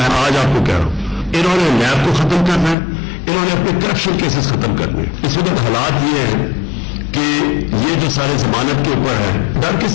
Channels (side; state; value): right; drops out; at 2.8 s